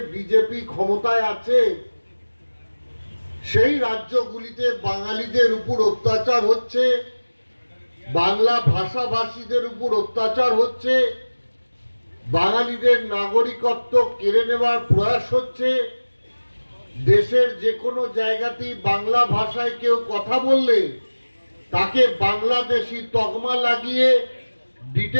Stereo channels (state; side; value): inverted; both; correlation -1.00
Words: বিজেপি ক্ষমতায় আছে, সেই রাজ্যগুলিতে বাঙালিদের উপর অত্যাচার হচ্ছে, বাংলা ভাষাভাষীদের উপর অত্যাচার হচ্ছে, বাঙালিদের নাগরিকত্ব কেড়ে নেওয়ার প্রয়াস হচ্ছে। দেশের যে কোনো জায়গাতেই বাংলা ভাষায় কেউ কথা বললে তাকে বাংলাদেশি তকমা লাগিয়ে